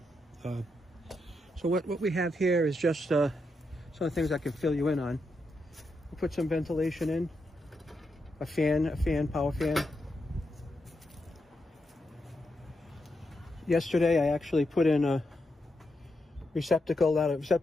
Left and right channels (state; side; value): normal; both; correlation 0.84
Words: So what we have here is just some of the things I can fill you in on. I put some ventilation in, a power fan. Yesterday I actually put in a receptacle, not a